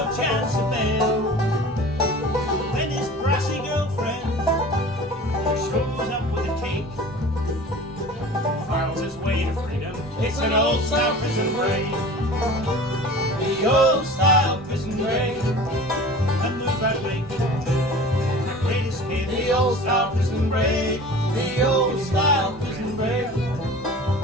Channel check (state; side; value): normal; both; correlation 0.40